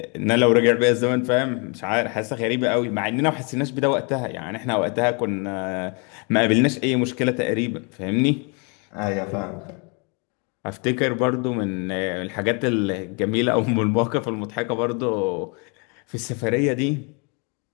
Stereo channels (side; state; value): right; quieter; 34.3 dB